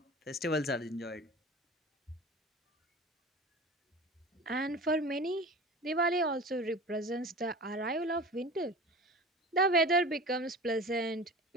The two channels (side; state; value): both; normal; correlation 0.36